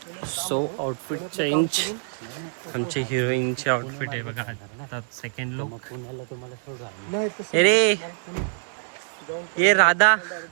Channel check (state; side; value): silent; left; digital silence